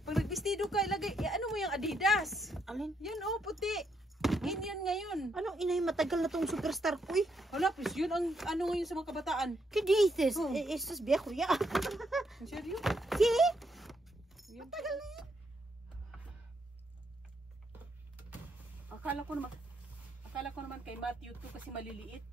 Pag vestido ka, ilagay, ano mo yung Adidas? Alin? Yan oh, puti. In yan ngayon. Anong inay, matagal na tong superstar ko eh. Hala, please, yun ang ano ngayon sa mga kabataan. ¿Qué dices? Oh. Esto es viejo ya. Ang seryo? ¿Sí? Yan. Matagal na yan. Akala ko naman kay Matthew to kasi maliliit.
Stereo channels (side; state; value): both; normal; correlation 0.76